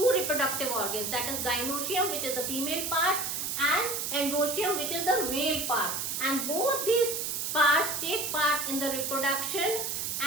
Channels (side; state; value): right; noise; hiss, 2 dB below the sound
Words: reproductive organs, that is gynoecium, which is the female part, and androecium, which is the male part, and both these parts take part in the reproduction,